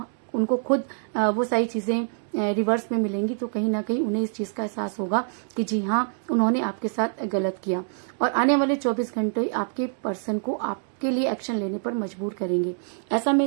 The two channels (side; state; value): left; silent; digital silence